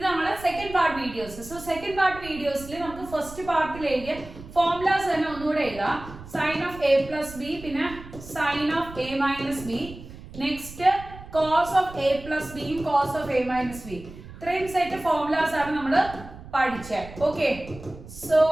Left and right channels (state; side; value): noise; right; rumble, 15 dB below the sound